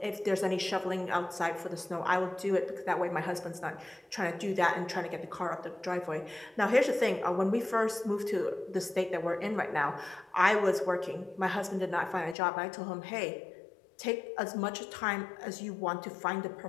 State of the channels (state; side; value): drops out; right; at 12.4 s